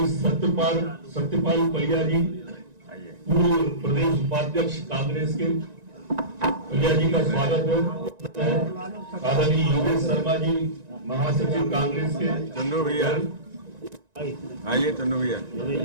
सत्यपाल पलिया जी, पूर्व प्रदेश उपाध्यक्ष कांग्रेस के, पलिया जी का स्वागत है। आदरणीय योगेश शर्मा जी, महासचिव कांग्रेस के। चंदू भैया आइए। चंदू भैया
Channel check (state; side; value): late; left; 1.9 ms